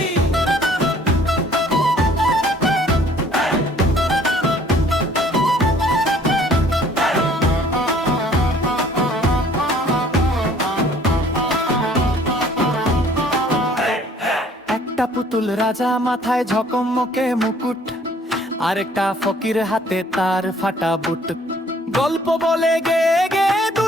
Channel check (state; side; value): normal; both; correlation 0.57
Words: একটা পুতুল রাজা, মাথায় ঝকমকে মুকুট, আরেকটা ফকির হাতে তার ফাটা বুট। গল্প বলে গে গে